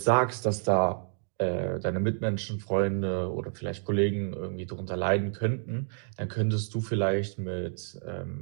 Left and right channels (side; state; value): left; silent; digital silence